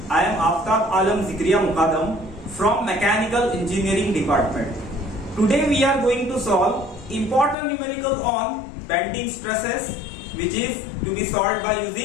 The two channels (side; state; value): right; drops out; at 7.6 s